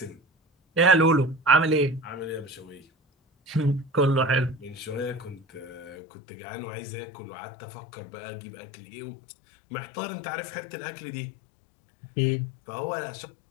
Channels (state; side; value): drops out; right; at 6.0 s